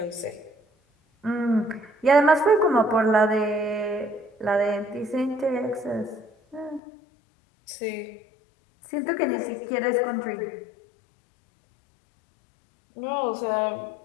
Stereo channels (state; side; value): drops out; right; at 6.8 s